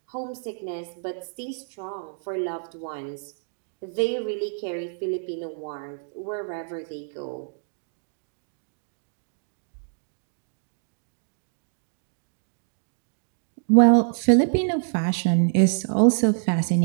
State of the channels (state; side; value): silent; left; digital silence